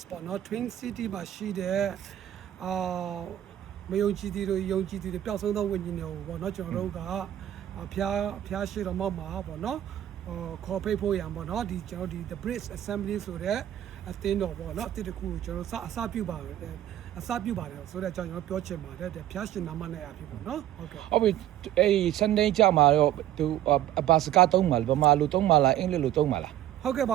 ပေါ့နော် Twin City မှာရှိတဲ့မယုံကြည်သူတွေယုံကြည်သူတွေပျောက်ဆုံးသောဝိညာဉ်တွေကိုပေါ့နော်ကျွန်တော်တို့ကဖျားရှိတော်မှာပေါ့နော်ခေါ်ဖိတ်ဖို့ရံပေါ့နော်ဒီကျွန်တော်ဒီ the bridge assembly ဆိုတဲ့အသင်းတော်ပေါ့နော်အသင်းတစ်ခုကိုကျွန်တော်အစပြုပါတယ်ဆိုတော့ကျွန်တော်ပြောချင်ပါတယ်ဖျားရှင်နာမနဲ့အဖြစ်ပေါ့နော်ဟုတ်ကဲ့ဟုတ်ပြီအဲ့ Sunday ကြမှာတော့သူဘာစကားသုံးမှာလဲဗမာလိုသုံးမှာလားအင်္ဂလိပ်လိုသုံးမှာလားဟုတ်ကဲ့ပ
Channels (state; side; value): quieter; left; 12.3 dB